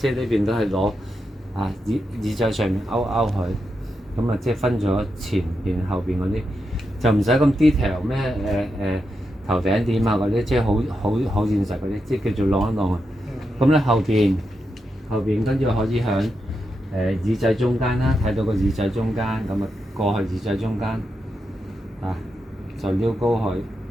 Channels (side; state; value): both; normal; correlation 0.86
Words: 係呢邊都係攞啊耳仔上面勾佢，咁啊即係分咗前邊後邊嗰啲，就唔使咁 detail 咩頭頂點啊嗰啲，即係好現實嗰啲，即係叫做晾一晾啊。咁咧後邊跟住可以響耳仔中間啦，睇到個耳仔中間，咁啊過去耳仔中間啊就撩高佢，